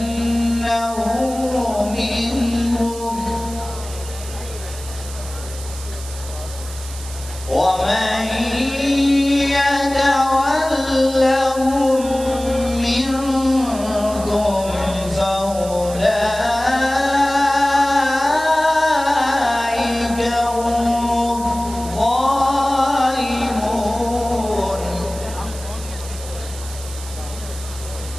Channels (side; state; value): right; noise; hiss, 14 dB below the sound